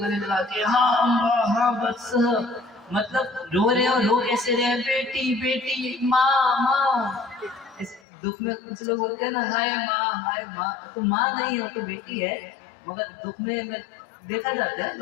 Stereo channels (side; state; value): right; drops out; at 8.0 s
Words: लगा के, हाँ अम्बा, हाँ वत्स, मतलब रो रहे हैं। और रो कैसे रहे हैं? बेटी बेटी, माँ माँ। इस दुख में कुछ लोग बोलते हैं ना, हाय माँ, तो माँ नहीं हो तो बेटी है, मगर दुख में देखा जाता है